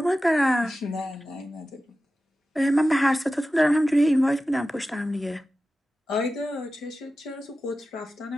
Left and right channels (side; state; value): both; normal; correlation 0.94